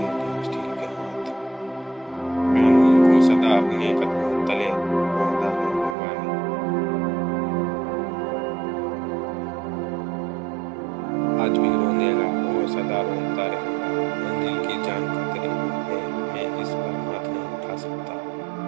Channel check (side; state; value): left; drops out; at 6.0 s